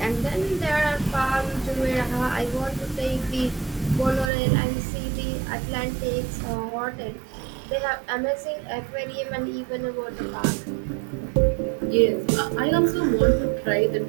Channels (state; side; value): drops out; left; at 4.3 s